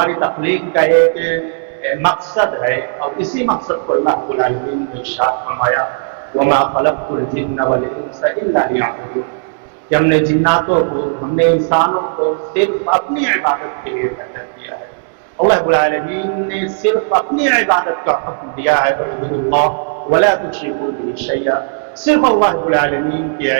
تخلیق کا ایک مقصد ہے اور اسی مقصد کو اللہ رب العالمین نے ارشاد فرمایا وما خلقت الجن والانس الا ليعبدون کہ ہم نے جناتوں کو ہم نے انسانوں کو صرف اپنی عبادت کے لیے پیدا کیا ہے. اللہ رب العالمین نے صرف اپنی عبادت کا حکم دیا ہے اعبدوا اللہ ولا تشركوا به شيئا. صرف اللہ رب العالمین کی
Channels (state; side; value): silent; left; digital silence